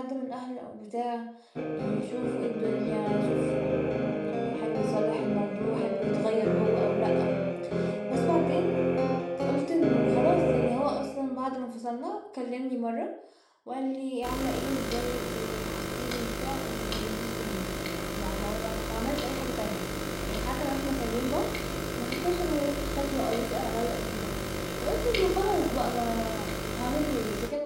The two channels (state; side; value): identical; both; correlation 1.00